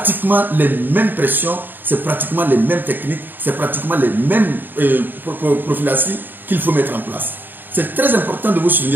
les mêmes pressions, c'est pratiquement les mêmes techniques, c'est pratiquement les mêmes prophylaxies qu'il faut mettre en place. C'est très important de vous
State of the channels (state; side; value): late; left; 0.092 ms